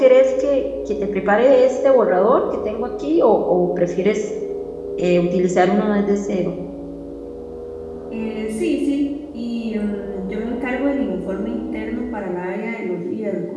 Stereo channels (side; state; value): both; identical; correlation 1.00